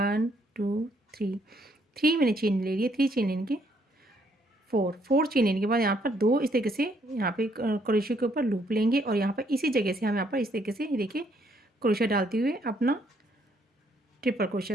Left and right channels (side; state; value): both; normal; correlation 0.69